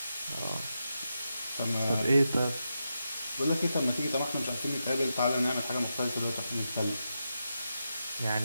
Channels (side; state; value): both; inverted; correlation -0.87